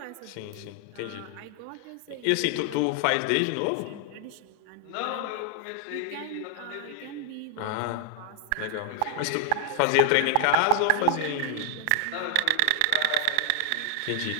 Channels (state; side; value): different; both; correlation 0.00